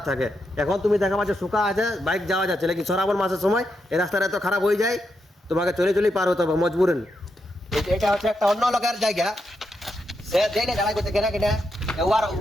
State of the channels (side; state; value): both; normal; correlation 0.83